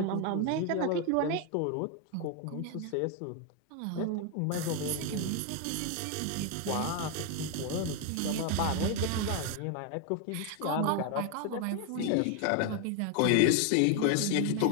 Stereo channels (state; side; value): different; both; correlation 0.01